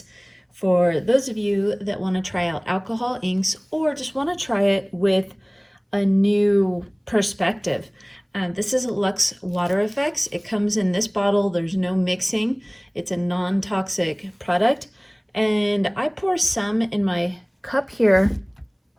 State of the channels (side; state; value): both; identical; correlation 1.00